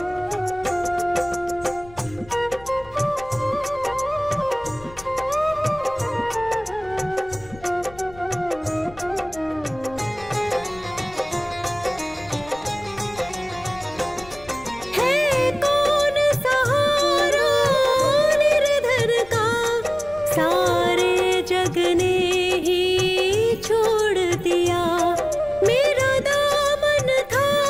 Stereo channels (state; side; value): noise; left; rumble, 21 dB below the sound